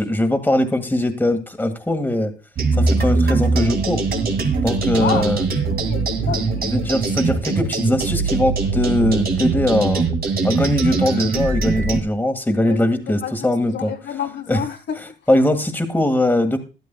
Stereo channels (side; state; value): both; normal; correlation 0.75